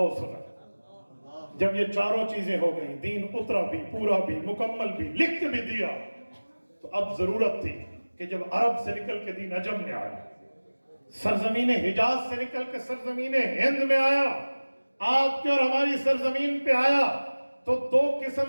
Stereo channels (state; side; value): inverted; both; correlation -1.00